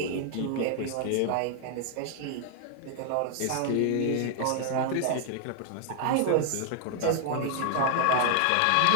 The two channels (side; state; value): both; different; correlation 0.00